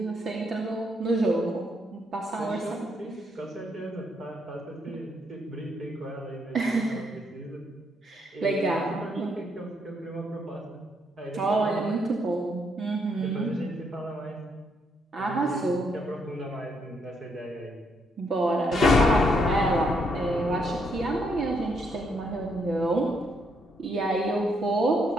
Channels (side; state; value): both; normal; correlation 0.74